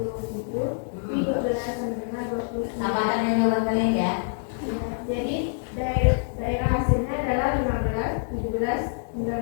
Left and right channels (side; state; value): right; silent; digital silence